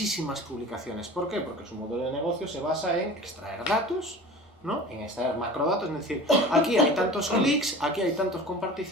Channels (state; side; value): normal; both; correlation 0.39